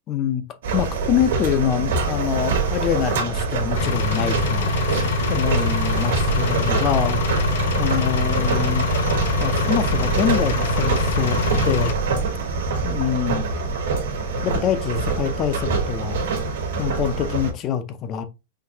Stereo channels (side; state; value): both; normal; correlation -0.14